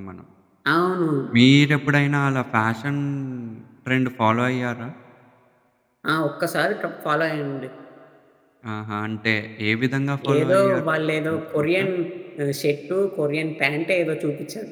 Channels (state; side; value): identical; both; correlation 1.00